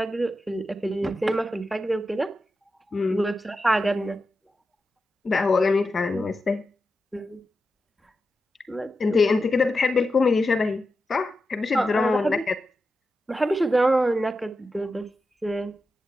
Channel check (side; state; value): both; normal; correlation 0.90